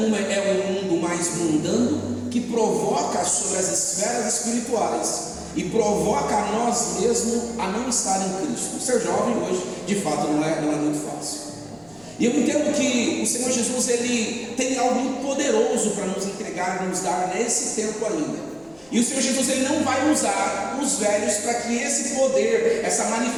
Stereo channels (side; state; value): left; noise; rumble, 29 dB below the sound